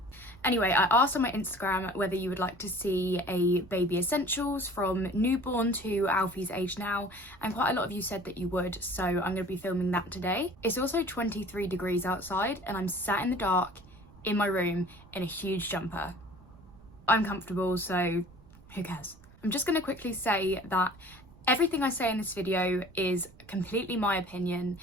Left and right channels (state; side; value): noise; right; rumble, 23 dB below the sound